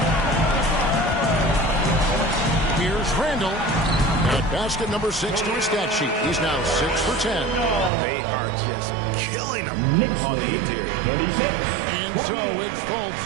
Here's Randall. At basket number 6 to his stat sheet. He's now 6 for 10. They are just killing them on the interior. And so it's Fultz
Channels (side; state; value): left; drops out; at 7.9 s